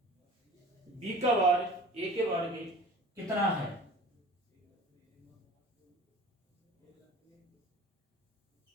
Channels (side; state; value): both; normal; correlation 0.43